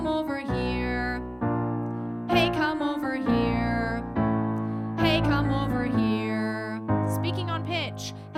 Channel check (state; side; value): identical; both; correlation 1.00